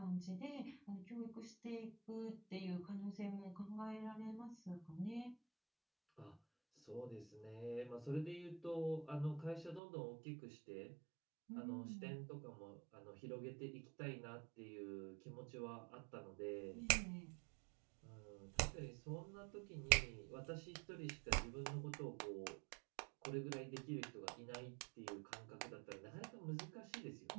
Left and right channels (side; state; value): left; drops out; at 9.8 s